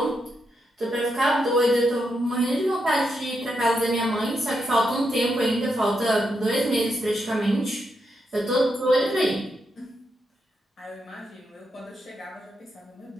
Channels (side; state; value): both; normal; correlation 0.83